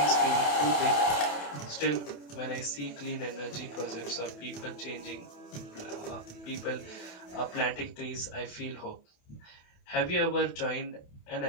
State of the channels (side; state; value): right; late; 28 ms